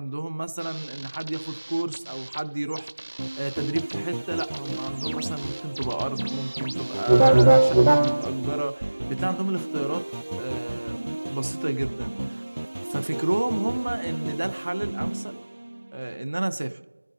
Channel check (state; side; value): inverted; both; correlation -1.00